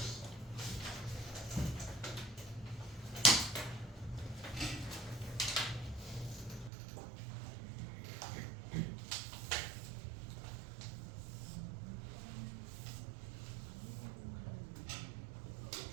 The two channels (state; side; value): drops out; left; at 6.7 s